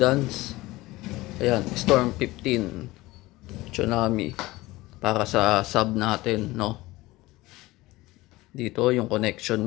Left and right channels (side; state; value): right; quieter; 19.4 dB